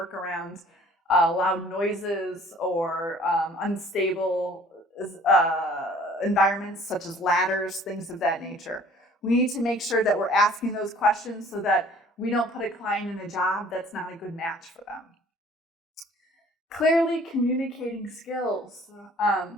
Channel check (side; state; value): both; normal; correlation 0.53